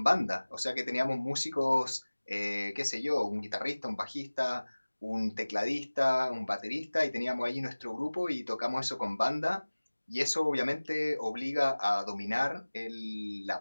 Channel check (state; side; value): inverted; both; correlation -1.00